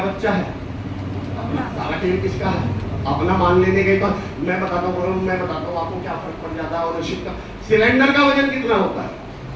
बच्चा है, सारा खेल किसका है, अपना मान लेने के बाद। मैं बताता हूँ आपको क्या फर्क पड़ जाता है ओनरशिप का। सिलेंडर का वजन कितना होता है?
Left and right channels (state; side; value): identical; both; correlation 1.00